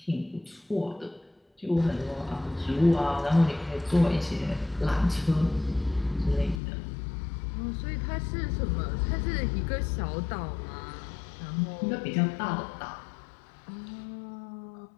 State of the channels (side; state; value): right; drops out; at 6.6 s